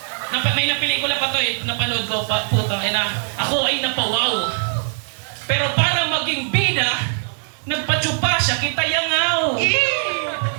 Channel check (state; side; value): silent; left; digital silence